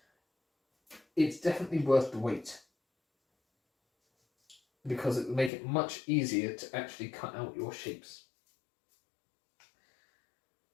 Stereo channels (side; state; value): right; drops out; at 5.5 s